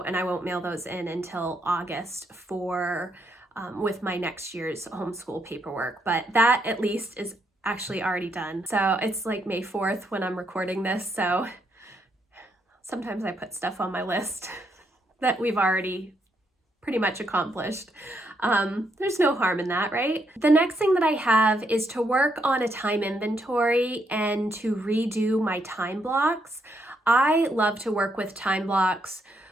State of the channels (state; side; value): normal; both; correlation 0.76